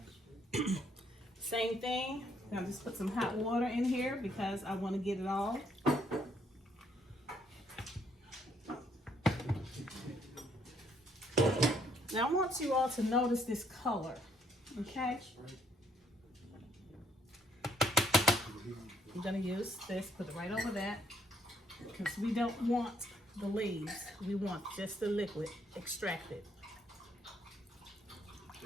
Same thing. I'm gonna just put some hot water in here because I want to get it all. Now I want you all to notice this color, okay? I'm gonna use this, put it right over that, because we don't want the leaves. We want just the liquid extracted.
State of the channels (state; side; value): normal; both; correlation 0.68